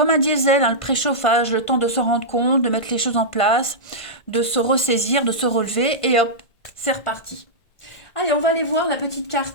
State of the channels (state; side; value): late; right; 1.5 ms